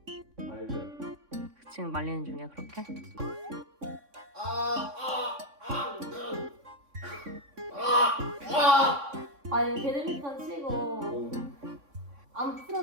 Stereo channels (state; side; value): late; left; 3.6 ms